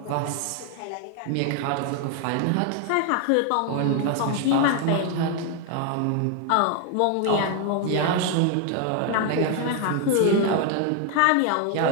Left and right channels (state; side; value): different; both; correlation 0.01